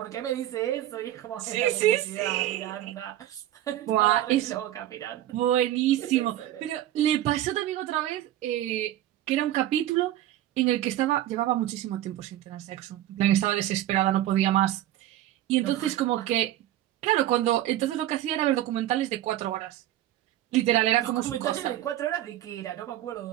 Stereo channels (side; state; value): left; quieter; 13.4 dB